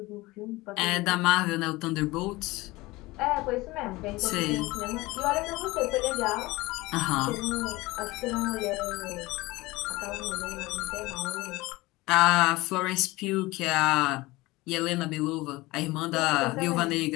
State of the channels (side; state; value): right; quieter; 20.8 dB